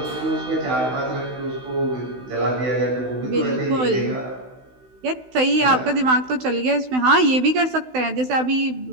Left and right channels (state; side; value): late; left; 16 ms